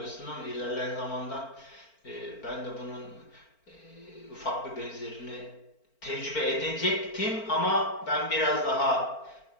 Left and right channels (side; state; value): right; late; 4.4 ms